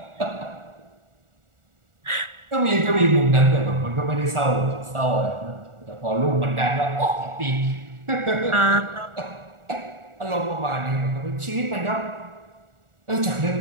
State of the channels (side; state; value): left; late; 1.4 ms